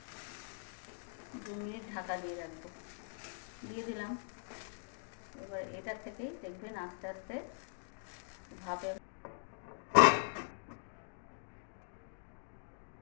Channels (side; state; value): right; silent; digital silence